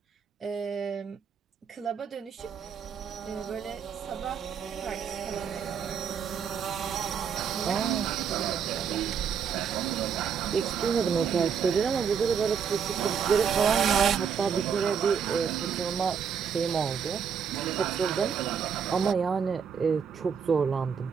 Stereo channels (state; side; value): quieter; left; 7.0 dB